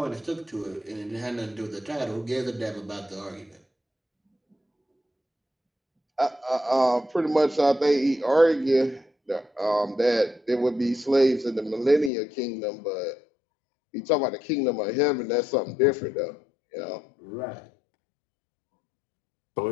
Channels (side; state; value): right; drops out; at 12.1 s